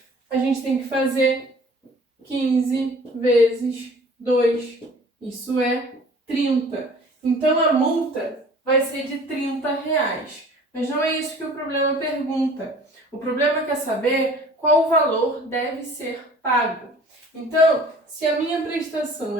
a gente tem que fazer 15 vezes 2. Isso é 30. Então a multa vai ser de R$ 30. Mas não é isso que o problema pergunta. O problema quer saber qual o valor deve ser pago. Então, se a minha prestação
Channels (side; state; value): both; normal; correlation 0.49